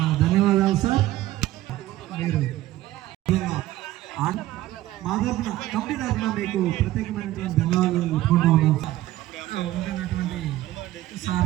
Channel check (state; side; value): quieter; left; 15.4 dB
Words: ధన్యవాదాలు సార్. మీరు మా తరఫున కమిటీ తరఫున మీకు ప్రత్యేకమైనటువంటి ధన్యవాదాలు తెలుపుకుంటా ఉన్నాం సార్. ఉంటున్నటువంటి